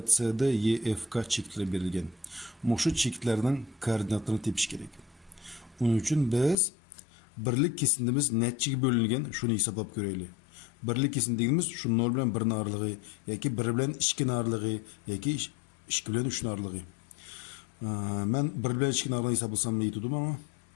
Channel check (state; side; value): drops out; right; at 6.6 s